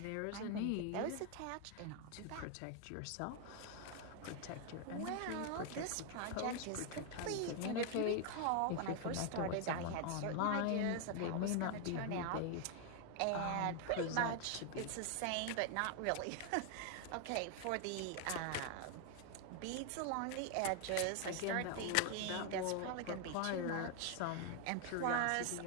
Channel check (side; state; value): both; different; correlation 0.00